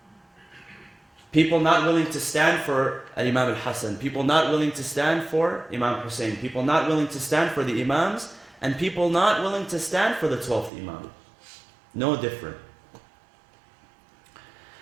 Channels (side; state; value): left; drops out; at 10.7 s